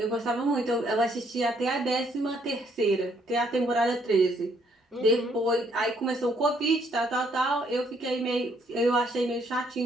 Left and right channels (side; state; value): both; normal; correlation 0.68